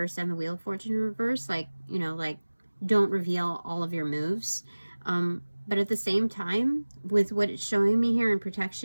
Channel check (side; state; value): both; inverted; correlation -1.00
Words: and the Wheel of Fortune in reverse. Like, you know, like, don't reveal all of your moves. But at the same time, with what it's showing me here in